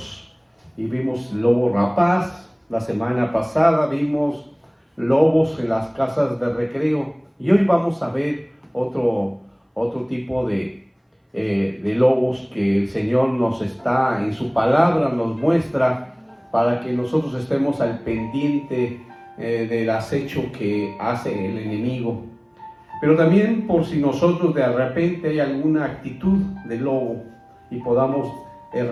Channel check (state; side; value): identical; both; correlation 1.00